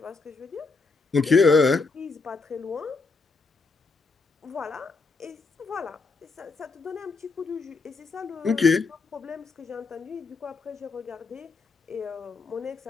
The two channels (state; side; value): quieter; right; 4.1 dB